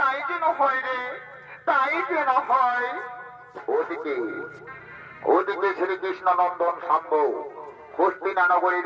যেন হয় রে, তাই যেন হয়। ওদিকে ওদিকে শ্রীকৃষ্ণ নন্দন শাম্ব হস্তিনা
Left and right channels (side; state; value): both; identical; correlation 1.00